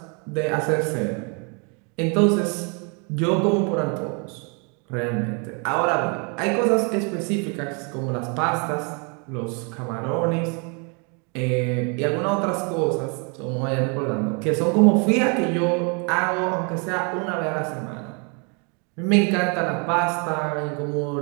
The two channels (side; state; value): left; quieter; 35.2 dB